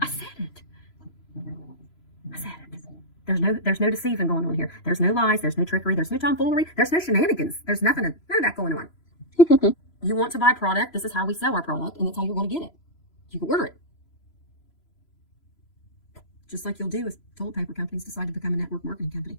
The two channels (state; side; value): late; right; 3.0 ms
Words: I said it. There's no deceiving going on here. There's no lies. There's no trickery. There's no tomfoolery. There's no shenanigans. There's none of that going on. You want to buy product, this is how we sell our product, and that's how you're going to get it. You can order it. Just like you'll do if toilet paper companies decide to become a network marketing company,